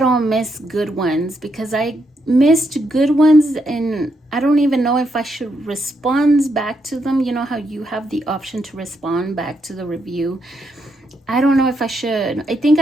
miss good ones, because I missed good ones and I don't even know if I should respond back to them. You know how you have the option to respond back to the review? I don't know if I should. I think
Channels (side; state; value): both; normal; correlation 0.79